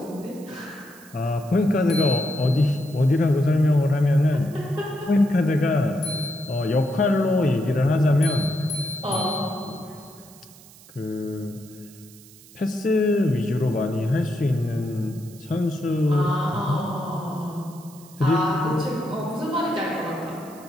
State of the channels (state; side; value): noise; right; hiss, 23 dB below the sound